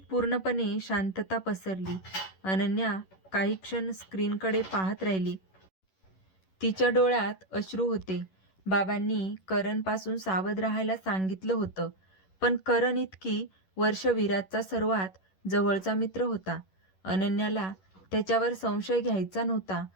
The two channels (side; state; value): right; late; 11 ms